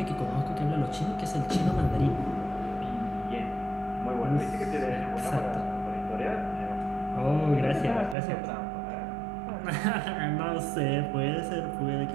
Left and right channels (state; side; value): drops out; left; at 8.2 s